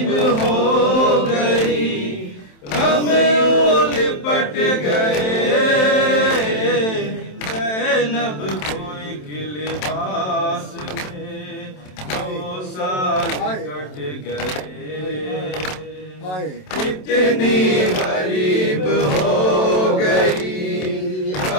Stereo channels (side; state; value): right; late; 27 ms